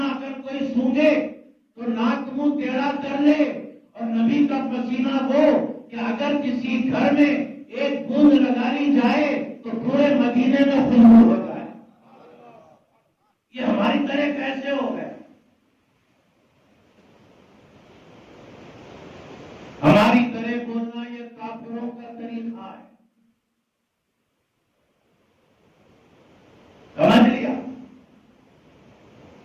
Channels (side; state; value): both; identical; correlation 1.00